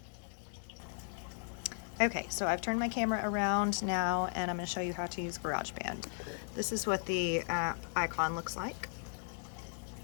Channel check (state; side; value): silent; right; digital silence